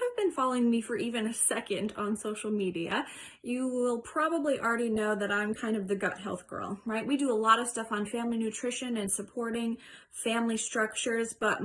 been following me for even a second on social media, you will probably already know that I'm kind of the gut health girl, right? We do a lot of stuff on family nutrition and supporting family structures, but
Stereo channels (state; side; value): identical; both; correlation 1.00